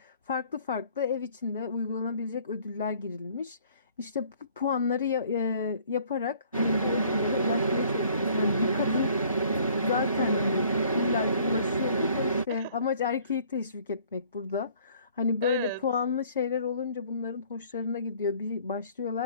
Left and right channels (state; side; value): inverted; both; correlation -0.57